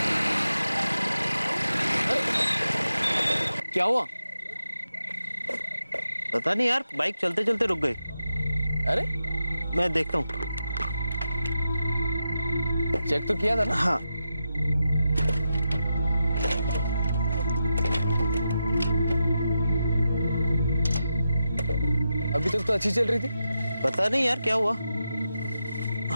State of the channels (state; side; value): inverted; both; correlation -0.88